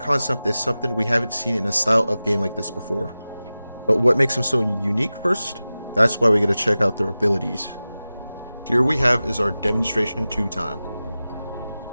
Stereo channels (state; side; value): inverted; both; correlation -0.96